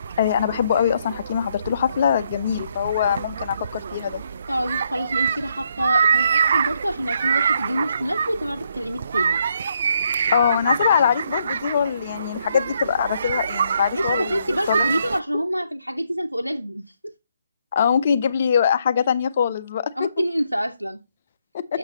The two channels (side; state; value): both; inverted; correlation -0.75